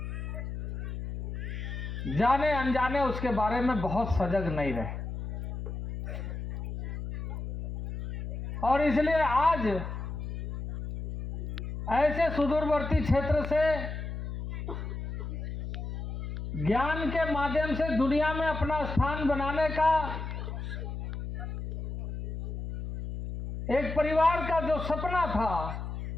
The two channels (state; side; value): noise; left; hum, 6 dB below the sound